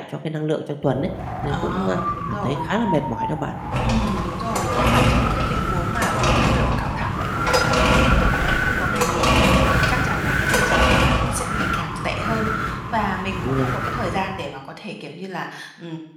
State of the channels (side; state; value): both; identical; correlation 1.00